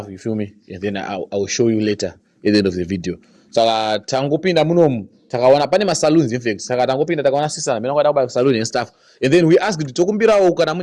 You feel me? And then I'll show you later at the end of the video. Saka tangopinda munomu takawana pane ma saloons in fact. Saka tangopinda takawana sisa mena kwada kuba salon and stuff. And then we asked tokumbirawo kana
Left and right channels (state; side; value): identical; both; correlation 1.00